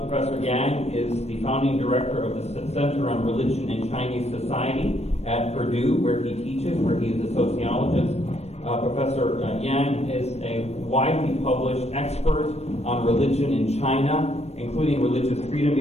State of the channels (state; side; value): late; right; 0.31 ms